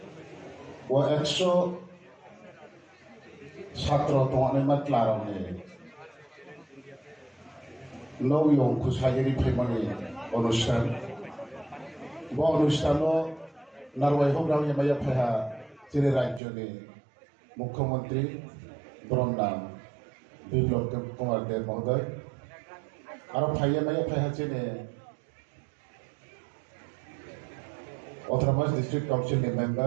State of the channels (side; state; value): left; drops out; at 16.4 s